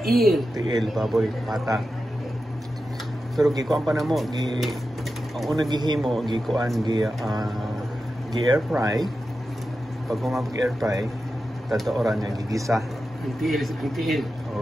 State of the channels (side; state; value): both; normal; correlation 0.91